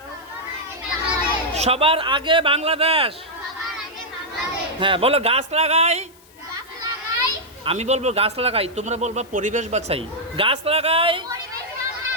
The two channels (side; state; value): left; noise; hiss, 27 dB below the sound